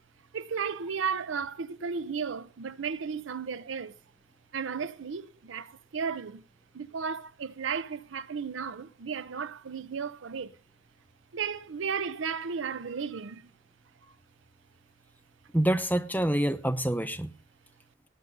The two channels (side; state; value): left; quieter; 3.1 dB